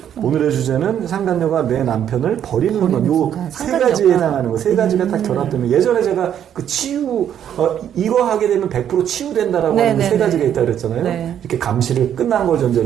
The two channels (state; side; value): quieter; left; 9.7 dB